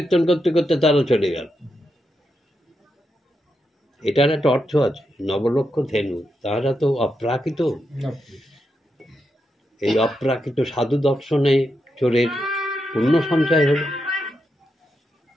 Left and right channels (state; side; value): normal; both; correlation 0.85